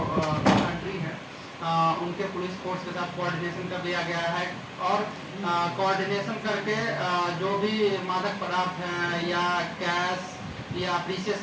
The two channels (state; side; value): identical; both; correlation 1.00